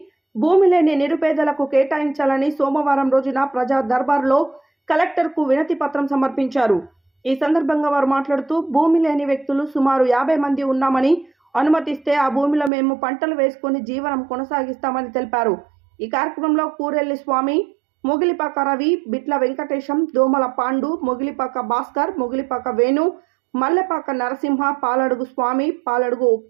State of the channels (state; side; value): drops out; left; at 12.7 s